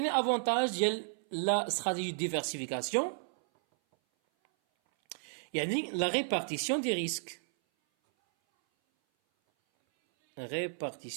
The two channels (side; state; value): left; silent; 56 dB below the other